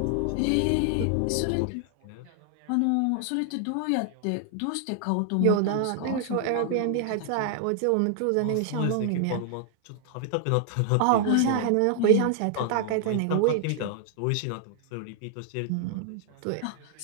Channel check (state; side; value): different; both; correlation 0.00